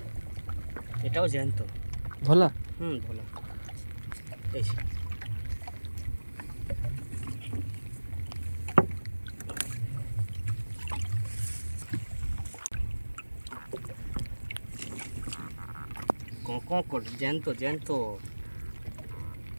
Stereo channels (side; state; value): both; inverted; correlation -1.00